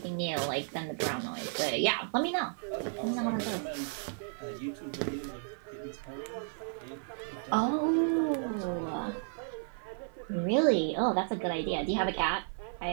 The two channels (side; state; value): left; silent; 56 dB below the other